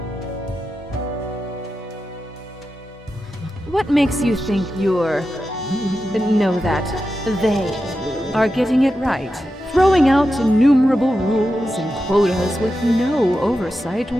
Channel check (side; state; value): both; normal; correlation 0.90